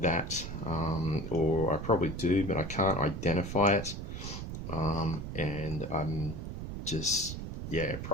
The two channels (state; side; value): noise; right; rumble, 7 dB below the sound